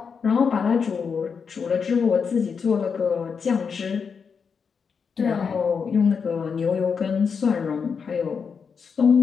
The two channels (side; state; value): right; quieter; 6.0 dB